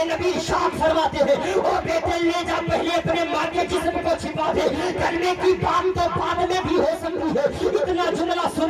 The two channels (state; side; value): identical; both; correlation 1.00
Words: نبی ارشاد فرماتے ہیں, او بیٹے لے جا, پہلے اپنے ماں کے جسم کو چھپا دے, کلمے کی بات تو بعد میں بھی ہو سکتی ہے. اتنا جملہ